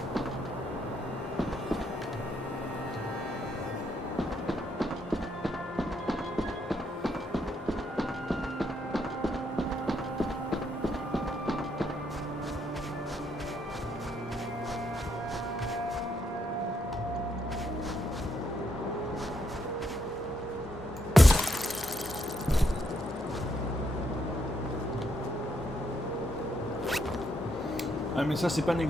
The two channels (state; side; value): normal; both; correlation 0.76